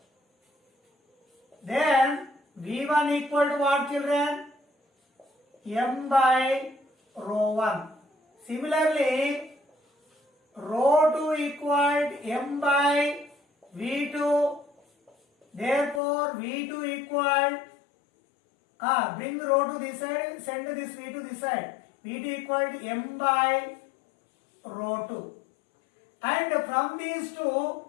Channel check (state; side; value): drops out; right; at 16.0 s